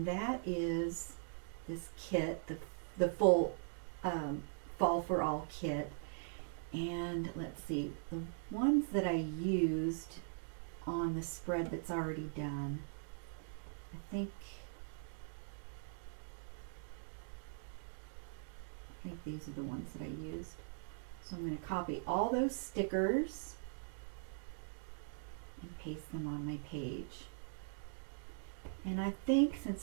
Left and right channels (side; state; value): left; silent; digital silence